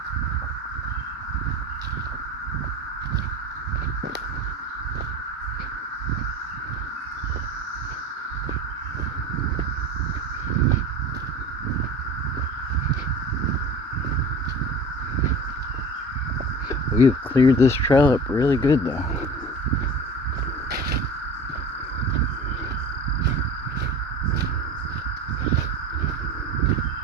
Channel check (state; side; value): normal; both; correlation 0.36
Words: We've cleared this trail up really good though.